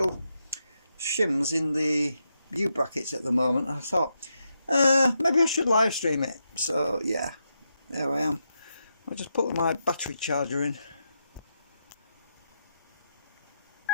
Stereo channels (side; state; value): both; inverted; correlation -0.84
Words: shims in the U brackets at the moment. I thought maybe I should live stream it. So yeah, there I am. I just put my battery charger in.